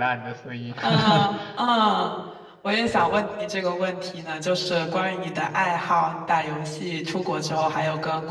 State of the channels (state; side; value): identical; both; correlation 1.00